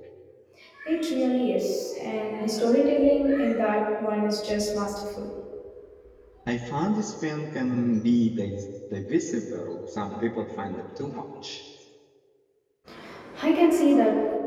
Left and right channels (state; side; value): identical; both; correlation 1.00